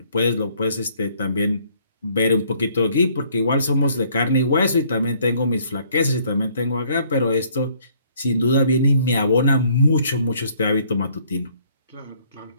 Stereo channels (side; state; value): both; inverted; correlation -0.63